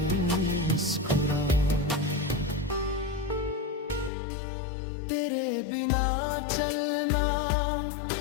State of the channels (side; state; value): right; drops out; at 4.1 s